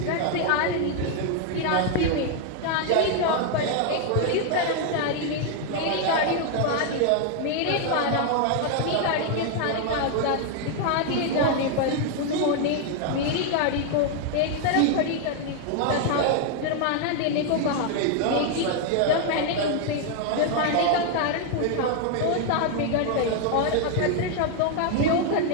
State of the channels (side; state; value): both; different; correlation 0.00